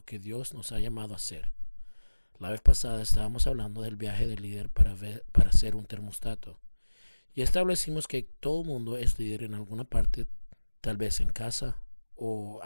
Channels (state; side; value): inverted; both; correlation -1.00